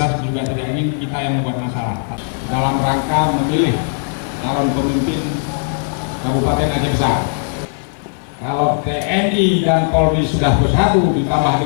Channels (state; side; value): silent; right; digital silence